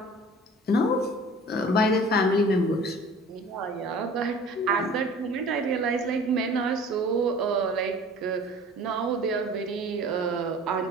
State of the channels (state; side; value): normal; both; correlation 0.45